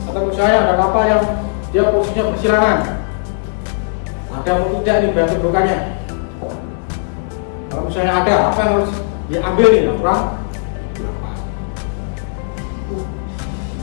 Atau misalnya ada kapal yang dia posisinya bersilangan, ada atau tidak nih daya tumpukannya. Kalau misalnya ada, apa yang harus diambil nih? Aturan 8.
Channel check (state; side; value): silent; right; digital silence